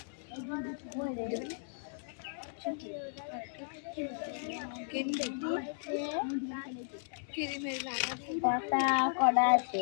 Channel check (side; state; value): right; silent; digital silence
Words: পাতা করা আছে